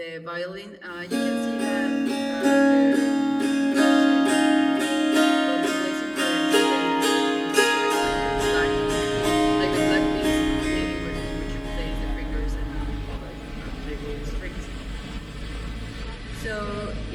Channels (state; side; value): identical; both; correlation 1.00